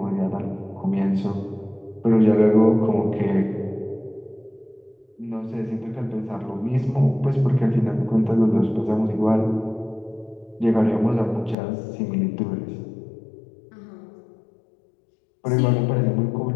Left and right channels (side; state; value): right; drops out; at 11.6 s